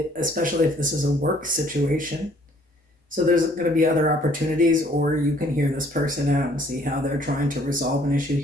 especially if this is a work situation. So there's going to be other opportunities, or you can hear this person out and see how they're trying to resolve an issue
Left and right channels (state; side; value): normal; both; correlation 0.60